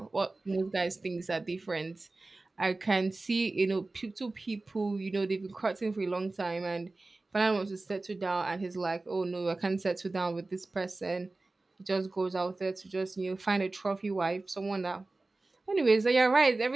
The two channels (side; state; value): left; quieter; 3.2 dB